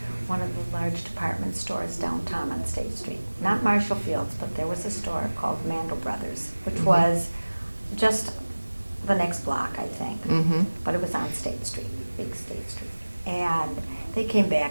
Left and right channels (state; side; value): inverted; both; correlation -1.00